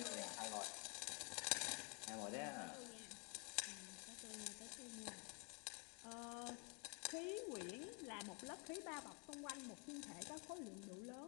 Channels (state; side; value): quieter; right; 36.1 dB